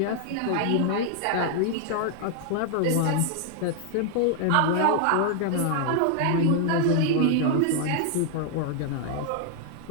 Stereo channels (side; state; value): both; different; correlation 0.00